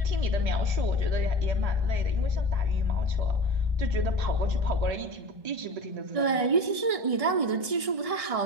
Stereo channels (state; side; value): late; left; 1.7 ms